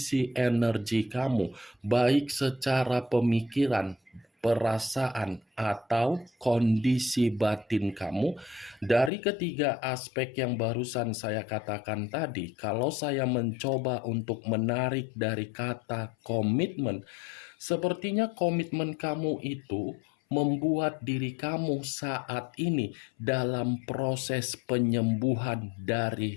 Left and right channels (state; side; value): drops out; right; at 9.1 s